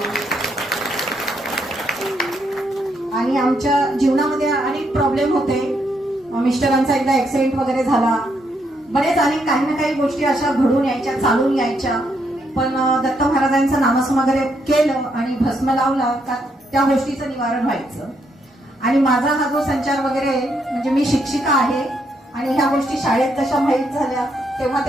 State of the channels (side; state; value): both; normal; correlation 0.76